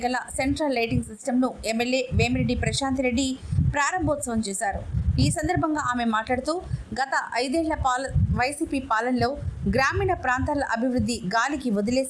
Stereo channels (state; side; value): identical; both; correlation 1.00